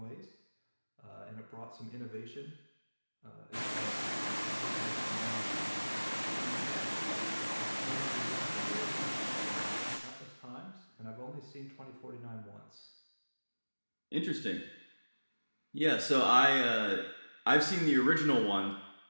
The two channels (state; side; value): inverted; both; correlation -1.00